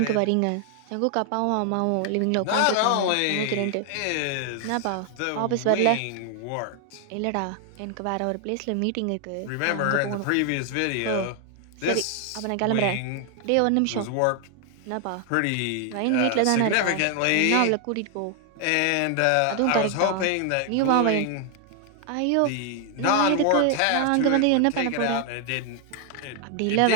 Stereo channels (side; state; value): both; different; correlation 0.00